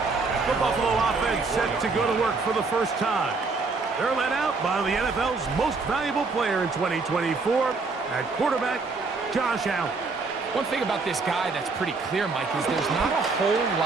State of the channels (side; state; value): left; quieter; 4.1 dB